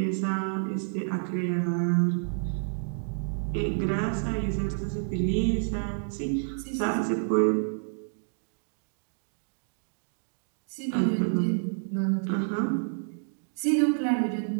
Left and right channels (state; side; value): silent; left; digital silence